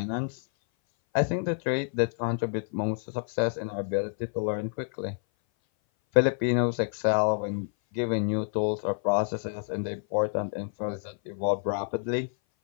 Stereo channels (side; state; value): right; silent; 57 dB below the other